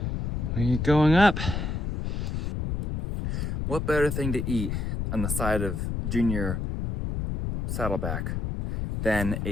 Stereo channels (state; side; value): noise; left; rumble, 2 dB below the sound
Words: We're going up. What better thing to eat on the side of Junior Saddleback than